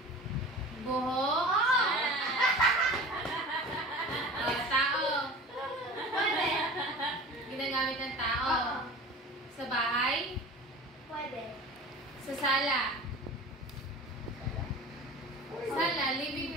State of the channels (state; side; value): normal; both; correlation 0.37